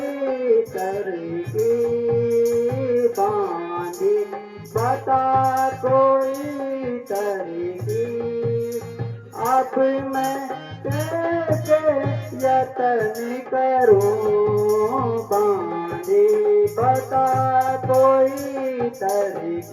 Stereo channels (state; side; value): identical; both; correlation 1.00